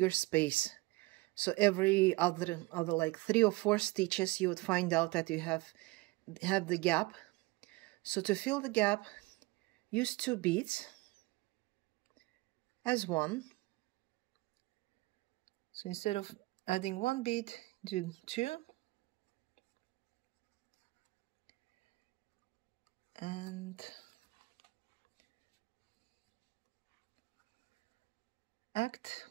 space. So every other like 3 or 4 stitches, you would find out that you have the gap. So to fill the gap, use 2 beads as one. So instead of adding 1 bead, do 2. And act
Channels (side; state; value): left; quieter; 22.2 dB